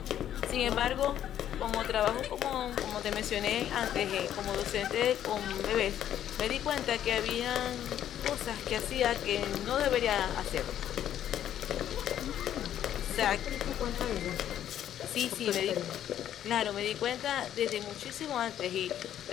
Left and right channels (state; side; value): quieter; right; 10.8 dB